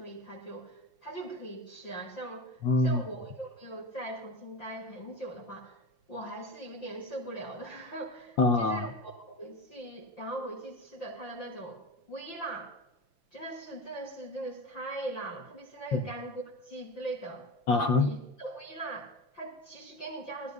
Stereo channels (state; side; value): late; right; 5.8 ms